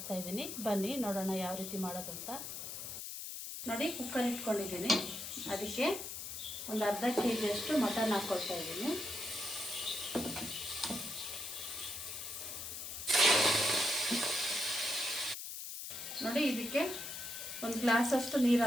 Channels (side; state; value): left; noise; hiss, 7 dB below the sound